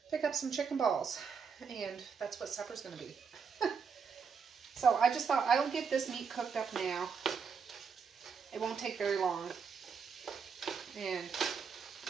pick up some chicken balls. And that's what supper's going to be. So I just thought, I'll get this meat cooked up now. It won't take very long. And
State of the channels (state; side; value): quieter; left; 6.0 dB